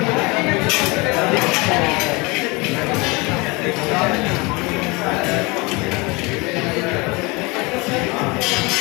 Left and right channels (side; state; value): right; quieter; 26.0 dB